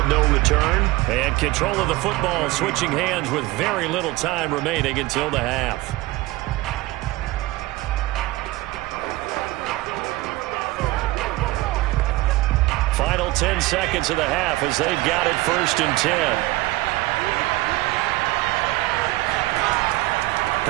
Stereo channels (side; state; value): left; quieter; 19.4 dB